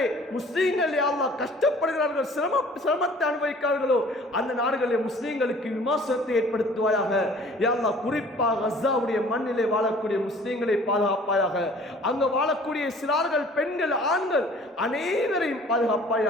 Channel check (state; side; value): normal; both; correlation 0.51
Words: முஸ்லீம்கள் யா அல்லாஹ் கஷ்டப்படுகிறார்கள், சிரமத்தை அனுபவிக்கிறார்களோ அந்த நாடுகளில் முஸ்லீம்களுக்கு விமர்சனத்தை ஏற்படுத்துவாயாக. யா அல்லாஹ் குறிப்பாக கஸாவுடைய மண்ணிலே வாழக்கூடிய முஸ்லீம்களை பாதுகாப்பாயாக. அங்கு வாழக்கூடிய சிறார்கள், பெண்கள், ஆண்கள் அனைவரையும்